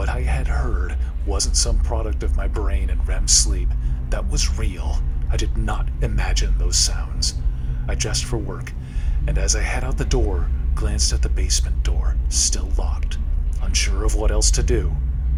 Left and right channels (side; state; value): both; identical; correlation 1.00